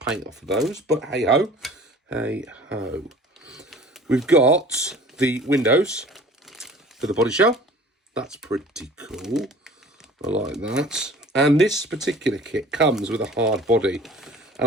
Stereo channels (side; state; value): both; normal; correlation 0.46